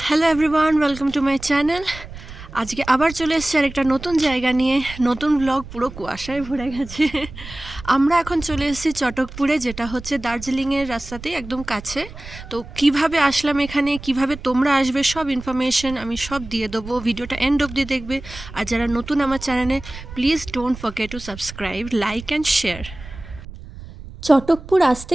Hello everyone, welcome to my channel. আজকে আবার চলে এসেছি আর একটা নতুন জায়গা নিয়ে, নতুন ব্লগ। পুরো কুয়াশায় ভরে গেছে। আমরা এখন চলে এসেছি চটকপুরে, যেটা হচ্ছে দার্জিলিংয়ের রাস্তাতেই একদম কাছে। তো কিভাবে আসলাম এখানে, কিভাবে তোমরা আসবে, সব ইনফরমেশন আমি সব দিয়ে দেবো। ভিডিওটা এন্ড অবধি দেখবে। আর যারা নতুন আমার চ্যানেলে, please don't forget to subscribe, like and share. Chatakpur আসতে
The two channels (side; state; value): right; noise; rumble, 14 dB below the sound